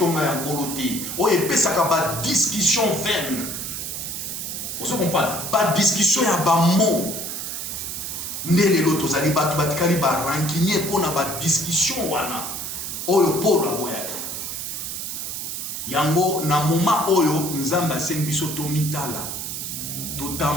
ya nkolo te oyo epesaka ba discussion vaine. Vous comprenez? Pas discussion ya ba mot ndele lo tozali batu batikali ba rancunier pona ba discussion wana oyo Paul aboyaki yango na moment oyo nzamba asengi biso tomitala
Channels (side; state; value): right; noise; hiss, 5 dB below the sound